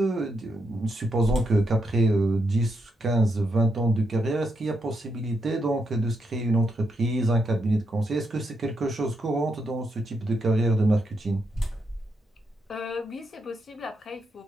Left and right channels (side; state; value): both; normal; correlation 0.81